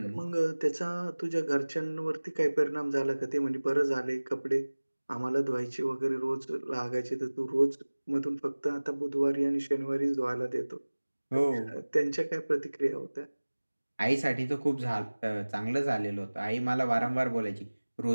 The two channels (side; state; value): both; inverted; correlation -1.00